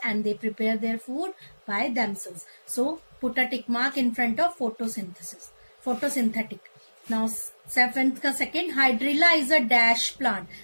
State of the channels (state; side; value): inverted; both; correlation -1.00